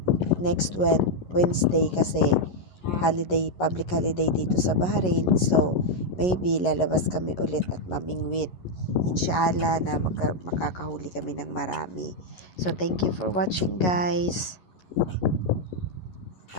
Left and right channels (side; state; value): right; late; 11 ms